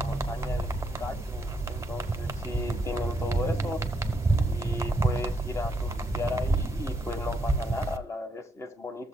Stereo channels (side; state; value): both; normal; correlation 0.77